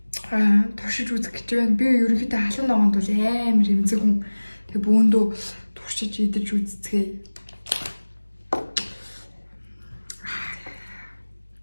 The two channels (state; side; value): inverted; both; correlation -1.00